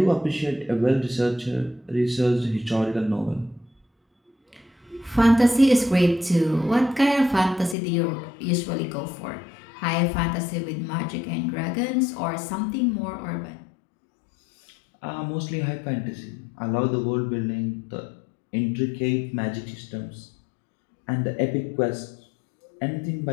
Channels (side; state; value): right; drops out; at 7.8 s